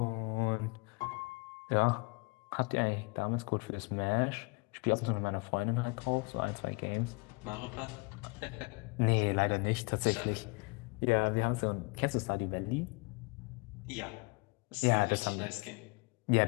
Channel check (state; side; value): quieter; right; 28.7 dB